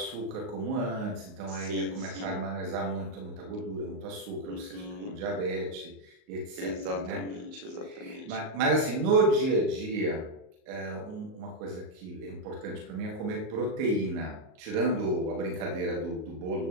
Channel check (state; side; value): late; left; 38 ms